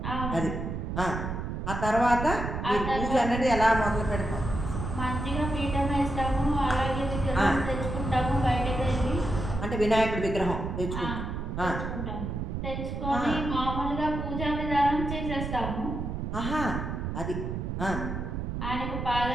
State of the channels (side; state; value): right; noise; rumble, 4 dB below the sound